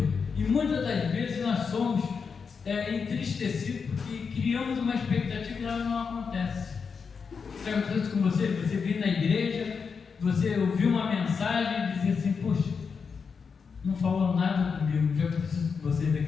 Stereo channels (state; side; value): quieter; right; 5.7 dB